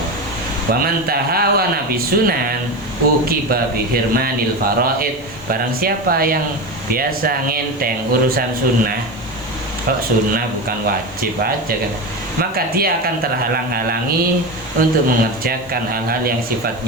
Wa man tahawana bi sunan uqiba bi hirmanil faraid. Barang siapa yang biasa ngenteng urusan sunnah, kok sunnah bukan wajib aja kan, maka dia akan terhalang-halangi untuk mengerjakan hal-hal yang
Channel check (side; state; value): left; noise; hiss, 27 dB below the sound